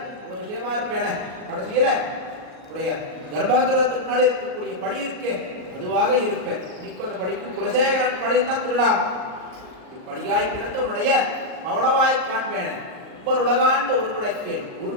ஒரு விஷயமா இருப்பேன. கடைசியில உடைய கர்ப்பகிரகத்துக்கு முன்னாடி இருக்கக்கூடிய படி இருக்கே அதுவாக இருப்பேன். இன்னைக்கு அந்த படிக்கு குலசேகரன் படிந்தான் திருடாம். படியாய் கிடந்த உன்னுடைய பவளவாய் காண்பேன். ஒவ்வொரு உலகாண்டு ஒரு குடைக்கேள்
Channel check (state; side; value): late; left; 38 ms